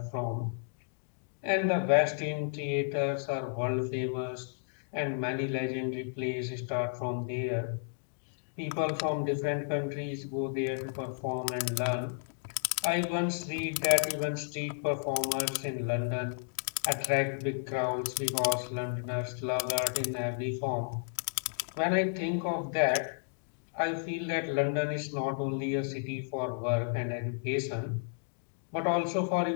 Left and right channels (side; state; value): right; silent; digital silence